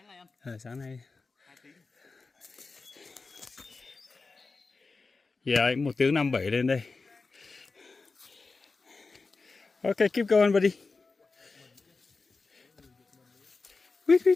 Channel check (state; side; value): quieter; right; 4.1 dB